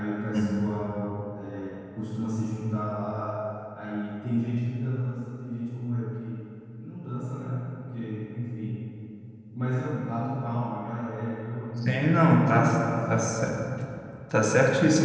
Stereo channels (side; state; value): both; identical; correlation 1.00